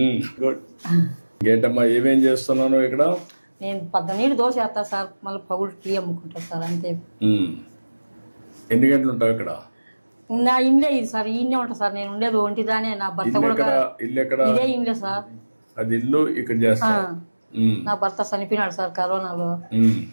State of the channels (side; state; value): both; inverted; correlation -1.00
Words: గుడ్. ఇంకేంటమ్మా, ఏమేం చేస్తున్నాను ఇక్కడ? నేను 12 దోశ వేస్తా సార్, మళ్ళీ పగులు టీ అమ్ముకుంటా సార్, అంతే. ఎన్ని గంటలు ఉంటావు ఇక్కడ? నా ఇల్లే ఇది సార్, ఈయనే ఉంటా సార్. నేను ఉండేది ఒంటిదానే. నా భర్త కూడా ఇల్లు ఎక్కడ? ఇదే ఇల్లే సార్. అది ఇల్లు ఇక్కడ చేస్తా. నా భర్త చనిపోయినాడు సార్ కరోనాలో.